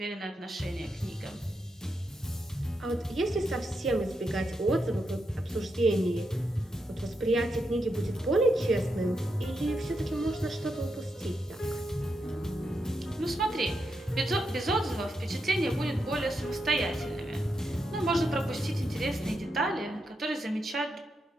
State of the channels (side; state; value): both; normal; correlation 0.84